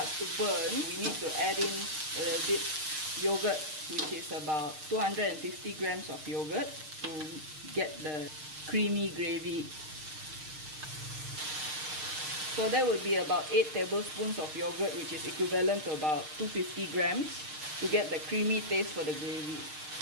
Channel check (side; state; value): left; late; 6.5 ms